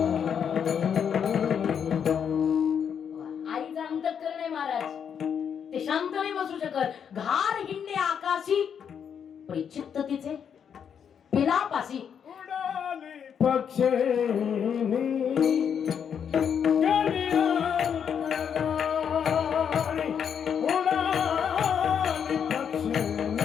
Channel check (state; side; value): quieter; right; 7.7 dB